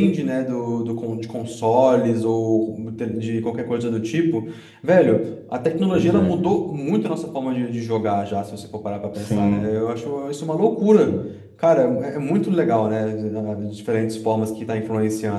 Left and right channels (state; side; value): identical; both; correlation 1.00